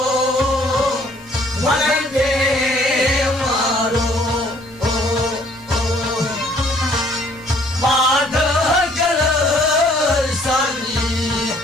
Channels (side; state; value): both; normal; correlation 0.61